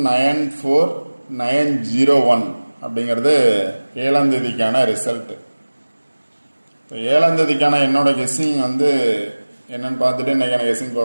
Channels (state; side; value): inverted; both; correlation -1.00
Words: அப்படிங்கிறது 7ஆம் தேதிக்கான ரிசல்ட்டு. இப்போ 7ஆம் தேதிக்கான என்னோட கெஸ்ஸிங் என்னன்னு பார்த்துட்டு இன்றைக்கான கெஸ்ஸிங்